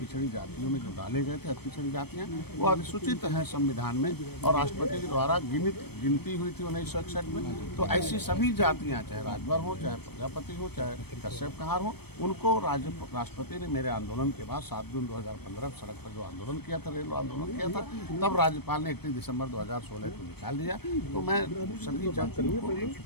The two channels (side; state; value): right; late; 0.97 ms